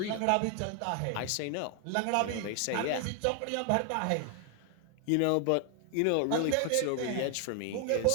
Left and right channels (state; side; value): different; both; correlation 0.00